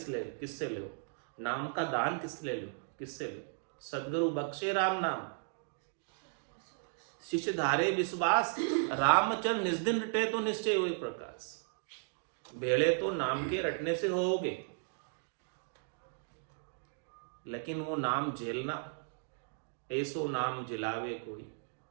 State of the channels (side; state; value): left; silent; digital silence